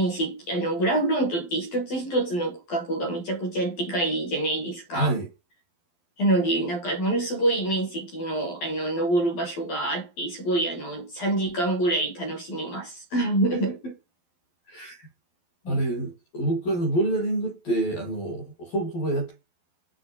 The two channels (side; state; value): right; late; 12 ms